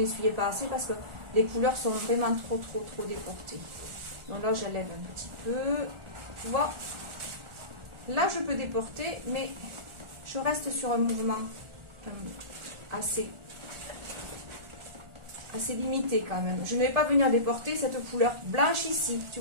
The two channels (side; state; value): left; late; 1.4 ms